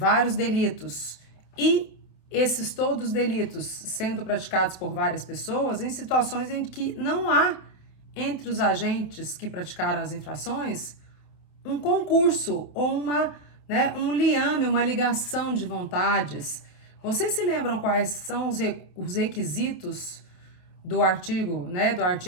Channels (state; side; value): late; right; 28 ms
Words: delitos e esses todos delitos sendo praticados por várias pessoas em situações em que não há entre os agentes que praticaram as infrações um concurso ou um liame, uma ligação de vontades. Vocês se lembram quais são os requisitos do artigo